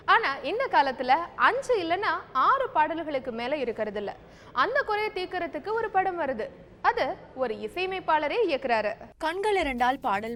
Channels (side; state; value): both; identical; correlation 1.00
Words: ஆனா இந்த காலத்துல 5 இல்லைன்னா 6 பாடல்களுக்கு மேல இருக்கிறது இல்ல. அந்த குறையை தீர்க்கறதுக்கு ஒரு படம் வருது. அது ஒரு இசையமைப்பாளரே இயக்குறாரு. கண்கள் இரண்டால் பாடல்